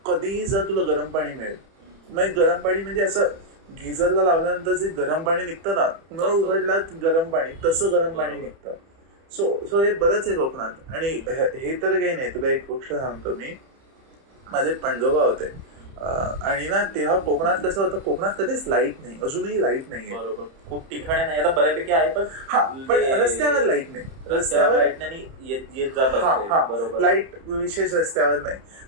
कधीही जा तुला गरम पाणी मिळेल. मग गरम पाणी म्हणजे असं गिझरला लावल्यानंतर जे गरम पाणी निघतं ना, नळ उघडला गरम पाणी, तसं गरम पाणी निघतं. सो हे बरंच आहे कोकणात. आणि हे तर काही नाही, तुला एक गोष्ट सांगतो मी. माझे पणजोबा होते आणि ना तेव्हा कोकणात कसं होतं, कोकणात कधीच लाईट नाही, अजूनही लाईट नाहीये. बरोबर, खूप ठिकाणी नाही, आता बऱ्यापैकी आहे, पण रस्त्यावर लाईट नाही, रस्त्यावर लाईट नाही येत जात. बरोबर, लाईट विशेष रस्त्यावर नाही.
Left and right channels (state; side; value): late; left; 30 ms